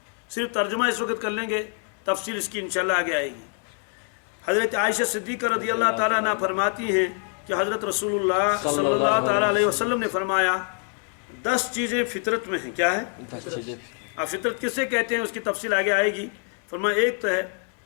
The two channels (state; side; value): quieter; right; 39.1 dB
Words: صرف ترجمہ اس وقت کر لیں گے، تفصیل اس کی انشاءاللہ آگے آئے گی. حضرت عائشہ صدیقہ رضی اللہ تعالیٰ عنہ فرماتی ہیں کہ حضرت رسول اللہ صلی اللہ تعالیٰ علیہ وسلم نے فرمایا 10 چیزیں فطرت میں ہیں. کیا ہے؟ فطرت کسے کہتے ہیں اس کی تفصیل آگے آئے گی. فرمایا ایک تو ہے